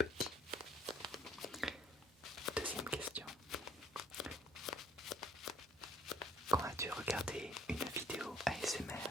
Deuxième question. Quand as-tu regardé une vidéo ASMR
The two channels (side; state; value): both; normal; correlation 0.60